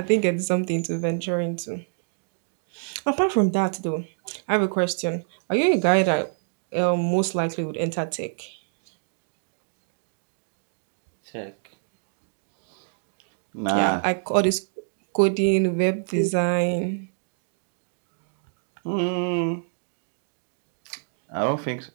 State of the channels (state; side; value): silent; left; digital silence